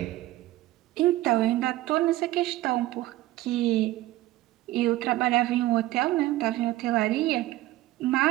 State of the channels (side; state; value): left; quieter; 16.7 dB